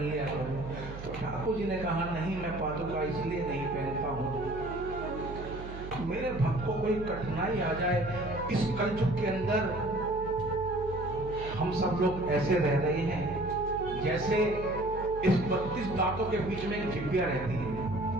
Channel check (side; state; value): right; noise; hum, 11 dB below the sound